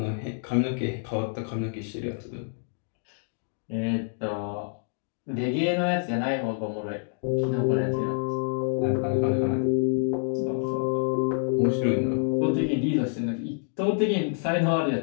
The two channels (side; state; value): right; silent; digital silence